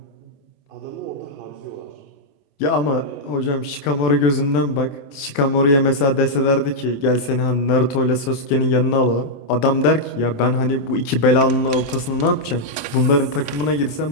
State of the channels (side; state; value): right; late; 27 ms